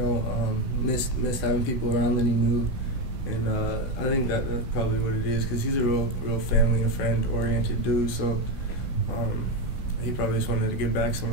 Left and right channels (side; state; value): right; late; 16 ms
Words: missed having people around that he knew, and I think that's probably what it is because he's a real family and friend oriented dude. So. He probably just wanted to get back